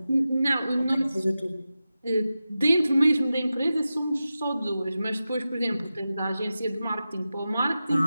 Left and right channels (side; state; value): both; inverted; correlation -0.93